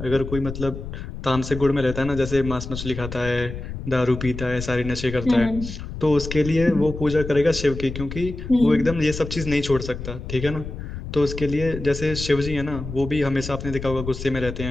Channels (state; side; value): noise; left; rumble, 8 dB below the sound